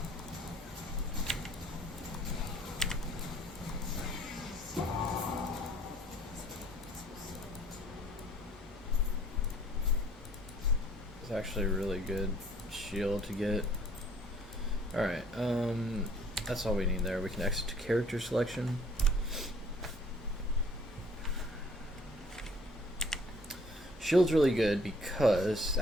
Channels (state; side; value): normal; both; correlation 0.57